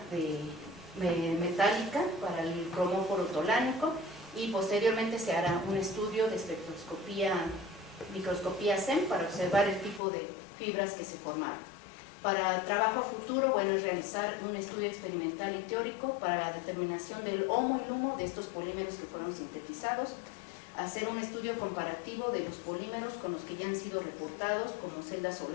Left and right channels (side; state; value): right; drops out; at 10.0 s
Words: metálica para el cromóforo tolánico, y posteriormente se hará un estudio de microscopía SEM para observar el tipo de fibras que se formaron. Para trabajo a futuro, bueno, es realizar un estudio experimental y teórico para la determinación del HOMO y LUMO de estos polímeros que fueron sintetizados, hacer un estudio comparativo de los polímeros con los que ya han sido reportados como celdas